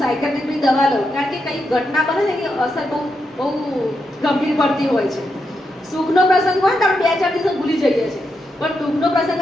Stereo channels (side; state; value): both; normal; correlation 0.84